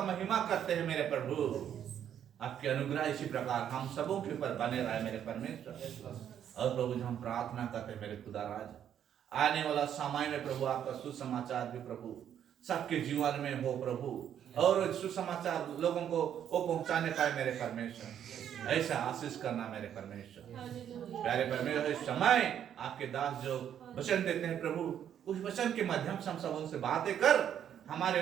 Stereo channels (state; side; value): quieter; left; 9.5 dB